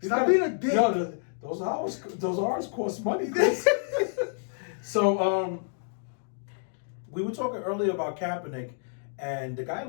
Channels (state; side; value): silent; right; digital silence